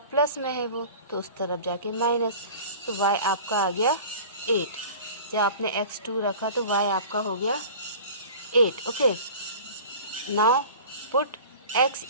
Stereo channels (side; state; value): both; inverted; correlation -0.40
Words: में है वो, तो उस तरफ जाके माइनस। तो y आपका आ गया 8। जब आपने x 2 रखा तो y आपका हो गया 8। Okay, now put x